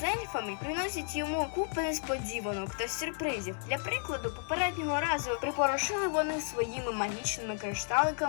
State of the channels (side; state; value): right; silent; 56 dB below the other